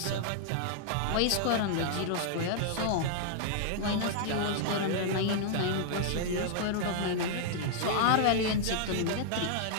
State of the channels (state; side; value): different; both; correlation -0.01